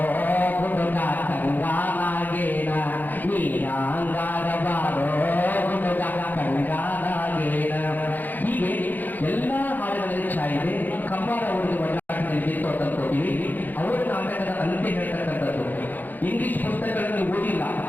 ಹುಡುಗ ಕಂಗಾನಾಗೇನ, ನೀ ಯಾಂಗಾರ ಬಾರೋ ಹುಡುಗ ಕಂಗಾನಾಗೇನ. ಹೀಗೆ ಎಲ್ಲ ಹಾಡುಗಳಲ್ಲಿ ಛಾಯಿದೆ. ಕಂಬಾರ ಅವರಿಗೆ ಒಳ್ಳಾಟದಲ್ಲಿ ತೋಟಲ್ಕೋತೀವಿ. ಅವರ ನಾಟಕದ ಅಂತ್ಯ ಹೇಳ್ತಕ್ಕಂಥದ್ದು. ಇಂಗ್ಲಿಷ್ ಪುಸ್ತಕಗಳನ್ನು ಓದಿಲ್ಲ,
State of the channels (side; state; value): right; late; 0.086 ms